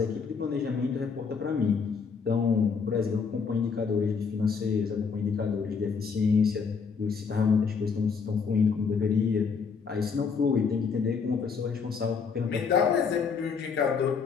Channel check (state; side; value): quieter; right; 5.6 dB